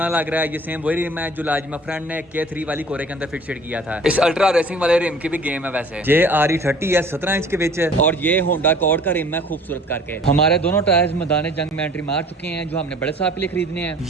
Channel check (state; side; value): normal; both; correlation 0.49